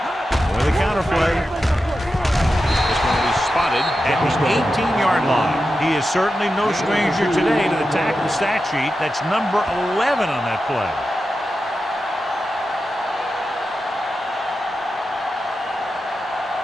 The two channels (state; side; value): normal; both; correlation 0.91